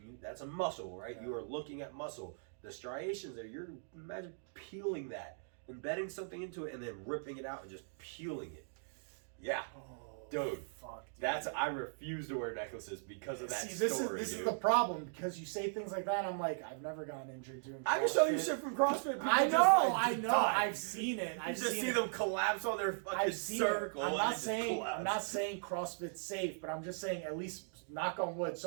that's a muscle, right? Yeah. You are looking at muscle. The striations there, imagine peeling that, embedding something into it and then ripping it out and just peeling it. Yeah. Dude, fuck, dude. I refuse to wear necklaces because of that story. This is the problem because you say things like that. I'm like, I've never gotten injured doing CrossFit. I can show you shit from CrossFit. I know. I've seen it. You just see them collapse on their fucking circle. I'm not saying CrossFit's safe, but I'm just saying at least knock on wood.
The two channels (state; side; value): silent; left; digital silence